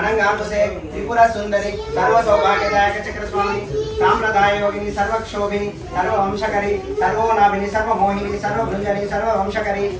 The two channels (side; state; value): both; identical; correlation 1.00